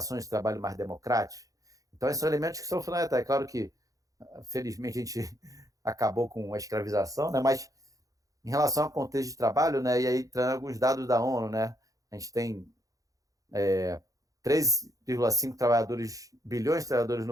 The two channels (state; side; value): late; left; 0.17 ms